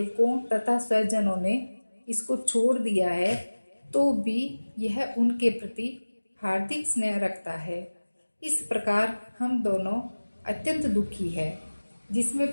तथा स्वजनों ने इसको छोड़ दिया है, तो भी यह उनके प्रति हार्दिक स्नेह रखता है। इस प्रकार हम दोनों अत्यंत दुखी है। जिसमें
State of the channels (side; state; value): both; inverted; correlation -1.00